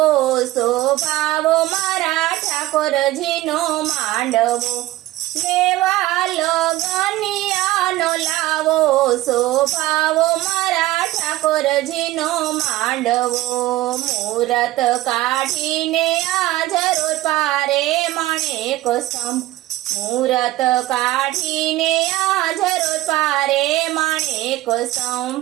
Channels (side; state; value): left; quieter; 16.7 dB